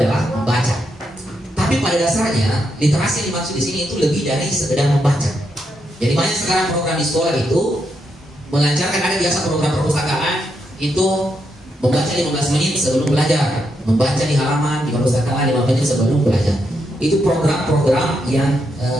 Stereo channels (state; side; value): normal; both; correlation 0.81